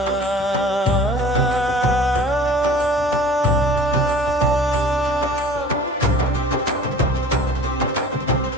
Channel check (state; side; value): normal; both; correlation 0.45